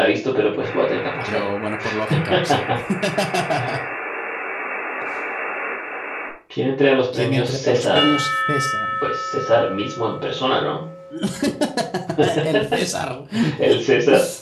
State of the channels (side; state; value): both; identical; correlation 1.00